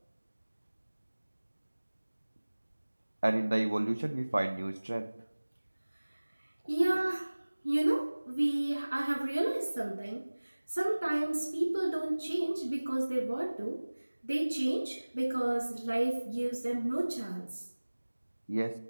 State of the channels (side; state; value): both; inverted; correlation -1.00